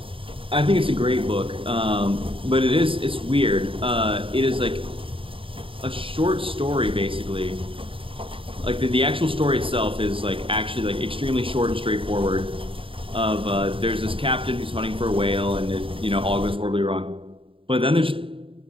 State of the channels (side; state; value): left; late; 0.26 ms